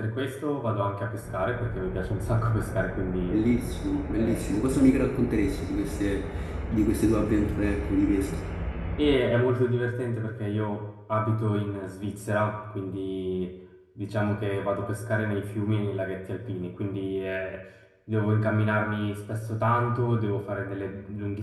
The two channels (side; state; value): both; identical; correlation 1.00